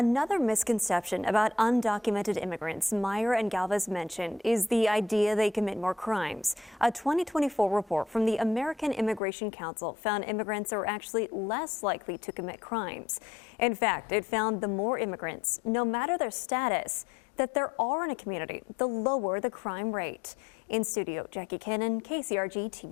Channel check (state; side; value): drops out; right; at 9.2 s